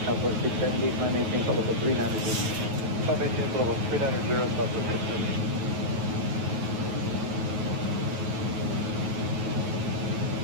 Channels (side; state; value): left; late; 9.5 ms